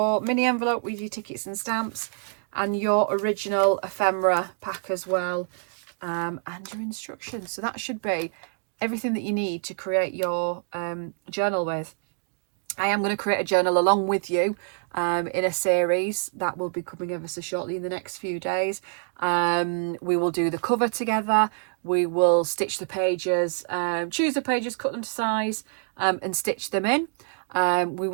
mini envelope with your tickets and stamps, and your original ephemera pack as well, and your instructions. So that should be everything that you need to create your journal with. I am going to create a journal along with you in a series that will be coming ever so shortly in the next few days. We will do the cover together. We will stitch the pages, choose the pages, cut them to size, and stitch them in. We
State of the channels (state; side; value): silent; left; 61 dB below the other